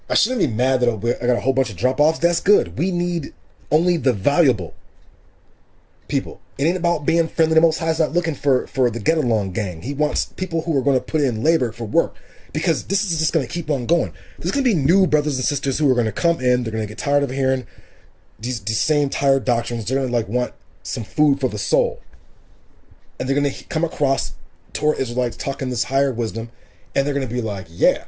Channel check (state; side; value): identical; both; correlation 1.00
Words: I shouldn't be mad that I got a whole bunch of drop-offs. That's good. We need only the valuable people. It ain't about being friendly. The Most High is not looking for the get-along gang. He wants people who are going to put in labor for work, because this is just going to keep on going. There's going to be new brothers and sisters who are going to come in. They're going to get tired of hearing these same tired doctrines. They're going to like want some food for the soul. And they're going to come across Torah Israelites talking this higher wisdom, and they're going to be like, yeah,